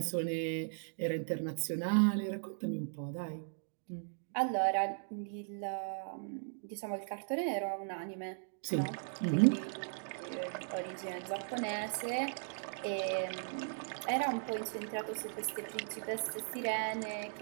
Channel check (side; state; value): left; silent; digital silence